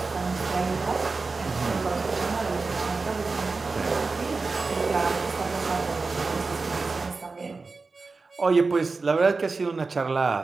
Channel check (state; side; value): quieter; left; 4.0 dB